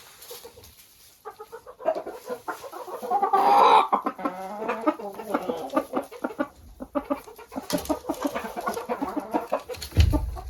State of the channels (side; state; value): both; identical; correlation 1.00